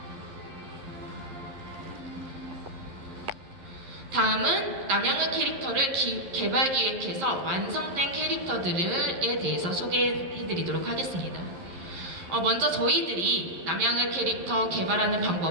다음은 남양은 캐릭터를 개발 기획해서 완성된 캐릭터들에 대해서 소개해드리도록 하겠습니다. 먼저 저희들이 남양은 캐릭터 개발하는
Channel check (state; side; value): late; left; 11 ms